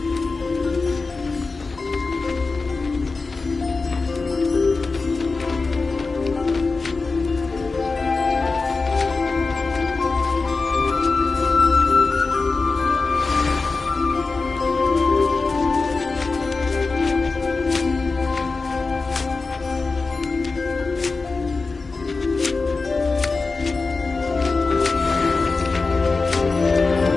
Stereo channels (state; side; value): quieter; right; 4.0 dB